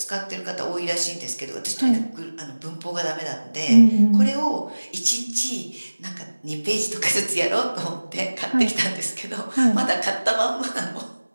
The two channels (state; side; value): inverted; both; correlation -1.00